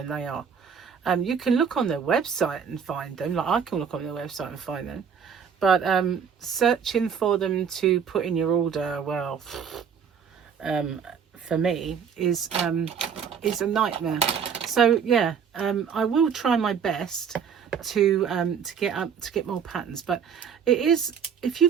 they are. You can look on their website and find them, like I can look on their website and find them, but searching for them to put in your order, well, for me is a nightmare. So yeah, I will try my best to get more patterns, but it is, if you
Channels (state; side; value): quieter; left; 7.1 dB